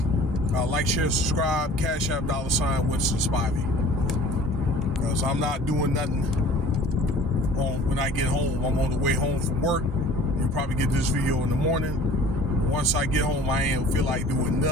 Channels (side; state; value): both; normal; correlation 0.48